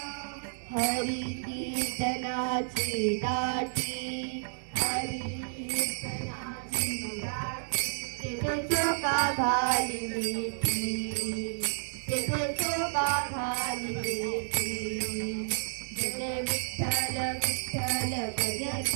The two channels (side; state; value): left; silent; digital silence